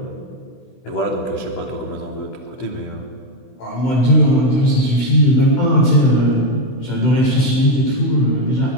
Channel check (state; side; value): late; right; 16 ms